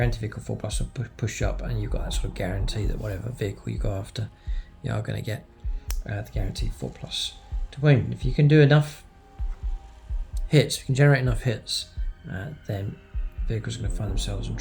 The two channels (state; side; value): identical; both; correlation 1.00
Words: anti-vehicle 4+ will push up, and you've got that sort of guarantee that whatever vehicle you go after, you are going to get the guaranteed 4+ to wound. If you can do enough hits, if you can generate enough hits, then vehicles are going to find themselves in